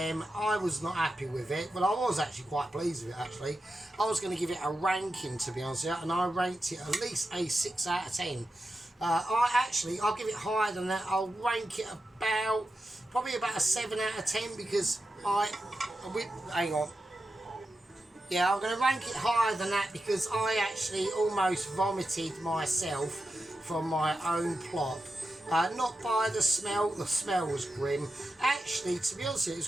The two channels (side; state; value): both; normal; correlation 0.90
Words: I was not happy with it, but I was actually quite pleased with it, actually. I was going to give it a ranking, to be honest with you, and I ranked it at least a 6 out of 10. I'll give it higher than that. I'll rank it probably about a 7 out of 10 because hang on. Yeah, I'm going to rank it higher than that because I actually almost vomited myself from my own plop. Not by the smell was grim. Actually, to be honest with you, it